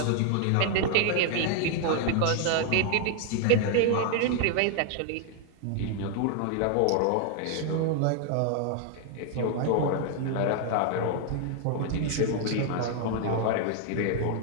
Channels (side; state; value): both; different; correlation 0.00